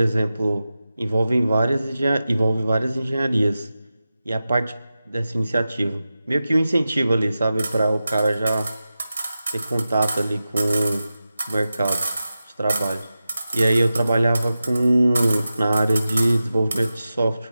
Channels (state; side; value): inverted; both; correlation -0.93